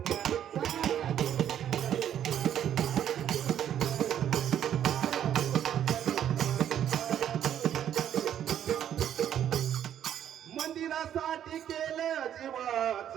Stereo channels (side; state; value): left; quieter; 10.2 dB